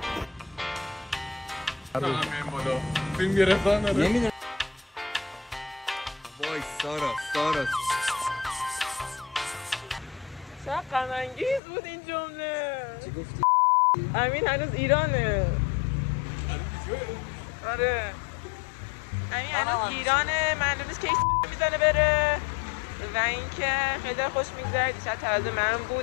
فیلم گرفتن نداره. نمیدونم. وای سارا چقدر غم انگیز بود این جمله. چی گفتی؟ امین هنوز ایرانه. آره امین هنوز ایرانه، معلوم نیست کی میزنه بره و اینکه خیلی خوش میگذره. دیشب تازه من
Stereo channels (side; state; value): right; drops out; at 11.6 s